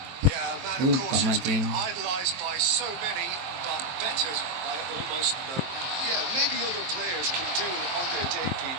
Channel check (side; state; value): left; late; 23 ms